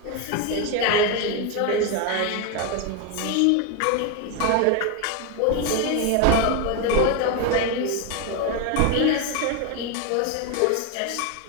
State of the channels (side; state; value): both; different; correlation 0.02